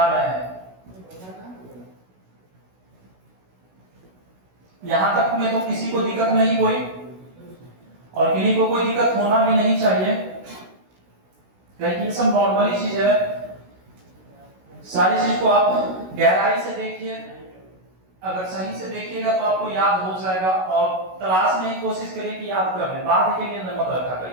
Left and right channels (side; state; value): left; late; 16 ms